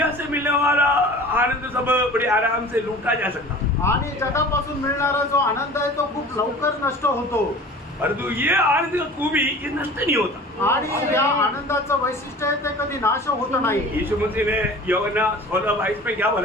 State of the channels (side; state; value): both; normal; correlation 0.42